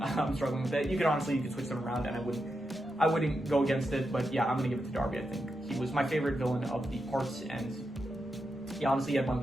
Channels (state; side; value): normal; both; correlation 0.86